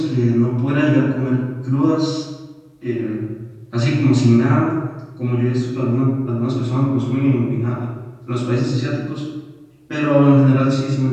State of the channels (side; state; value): both; identical; correlation 1.00